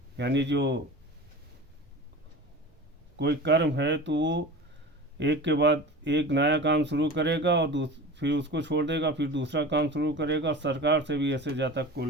यानी जो कोई कर्म है तो वो एक के बाद एक नया काम शुरू करेगा और फिर उसको छोड़ देगा, फिर दूसरा काम शुरू करेगा। सरकार से भी ऐसे जातक को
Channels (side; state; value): both; normal; correlation 0.34